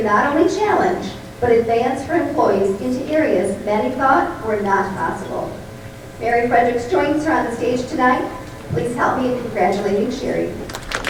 not only challenge, but advance her employees into areas many thought were not possible." Mary Fredericks joins her on the stage tonight. Please help me in congratulating Sherry.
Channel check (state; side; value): identical; both; correlation 1.00